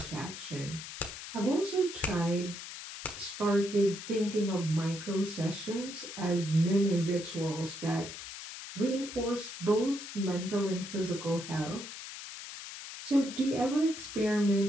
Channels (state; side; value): noise; left; hiss, 10 dB below the sound